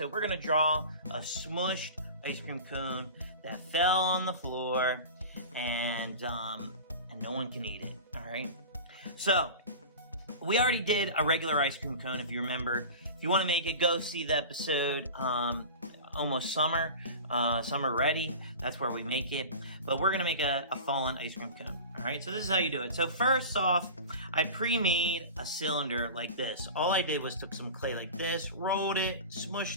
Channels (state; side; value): inverted; both; correlation -0.33